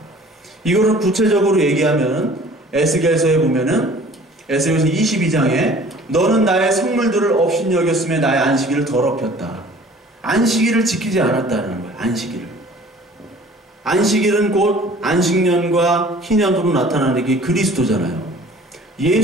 이거를 구체적으로 얘기하면 에스겔서에 보면은, 에스겔서 22장에 너는 나의 성물들을 업신여겼으며 나의 안식일을 더럽혔다. 안식일을 지키지 않았다는 거예요. 안식일은 곧 안식년과 희년으로 나타나는 게 그리스도잖아요.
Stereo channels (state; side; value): normal; both; correlation 0.49